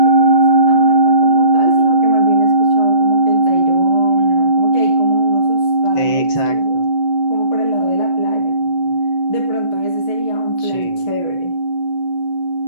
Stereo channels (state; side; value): late; right; 5.9 ms